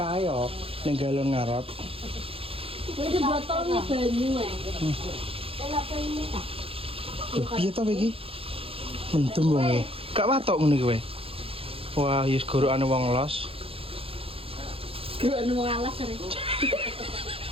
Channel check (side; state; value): left; late; 0.27 ms